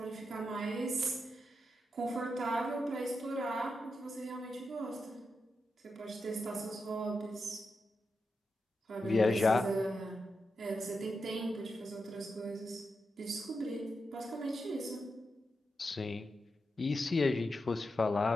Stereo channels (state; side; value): normal; both; correlation 0.87